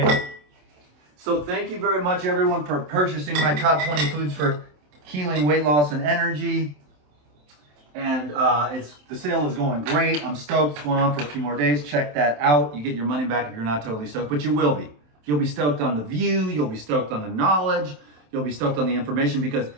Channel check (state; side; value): late; left; 27 ms